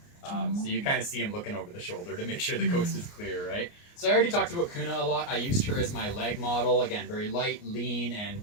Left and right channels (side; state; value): right; late; 29 ms